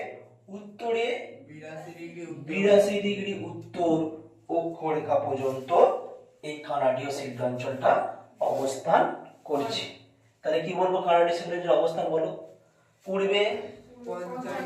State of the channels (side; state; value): both; identical; correlation 1.00